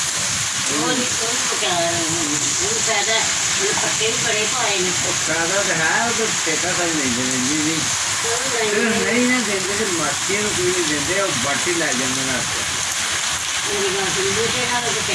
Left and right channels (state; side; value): identical; both; correlation 1.00